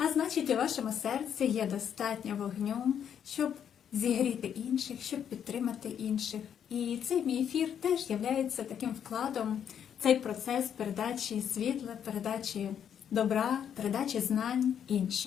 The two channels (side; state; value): right; quieter; 8.7 dB